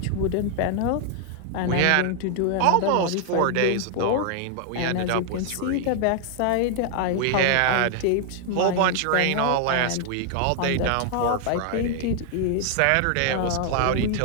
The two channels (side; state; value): both; different; correlation 0.00